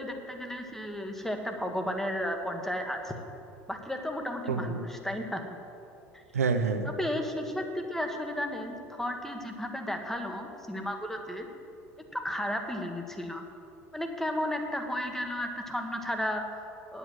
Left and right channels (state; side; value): normal; both; correlation 0.55